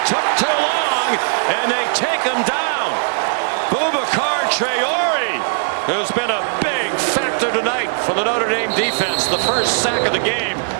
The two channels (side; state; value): left; silent; digital silence